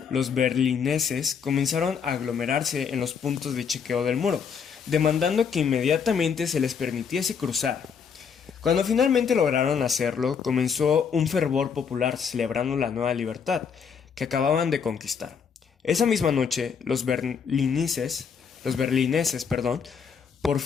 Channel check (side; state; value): right; quieter; 6.6 dB